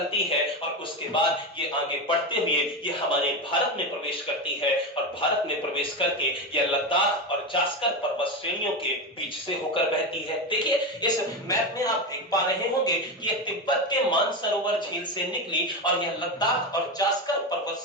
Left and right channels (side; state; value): both; normal; correlation 0.17